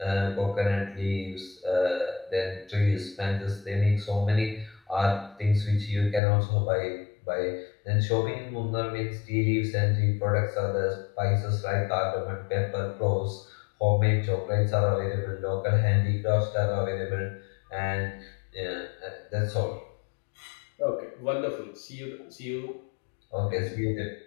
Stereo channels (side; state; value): right; drops out; at 6.2 s